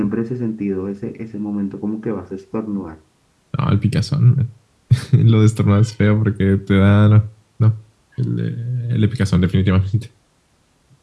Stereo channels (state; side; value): identical; both; correlation 1.00